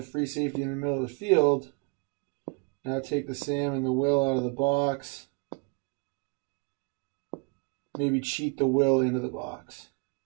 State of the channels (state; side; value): quieter; left; 32.5 dB